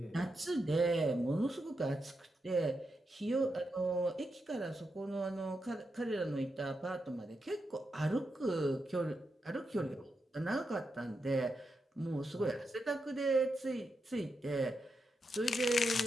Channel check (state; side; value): normal; both; correlation 0.85